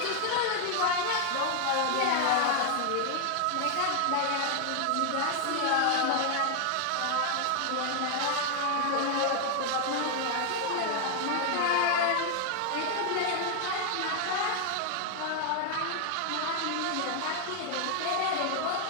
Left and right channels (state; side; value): different; both; correlation 0.00